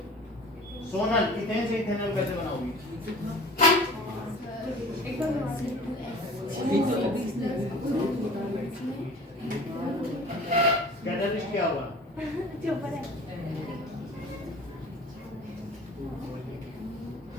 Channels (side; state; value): both; normal; correlation 0.43